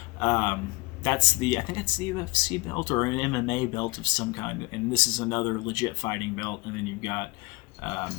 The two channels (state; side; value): quieter; right; 24.8 dB